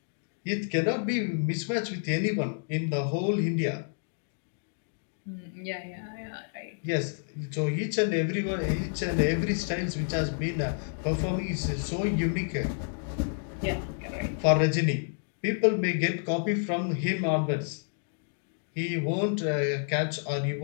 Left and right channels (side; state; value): right; silent; digital silence